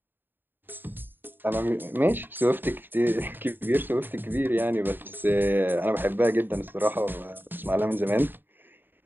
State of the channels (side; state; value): left; late; 0.095 ms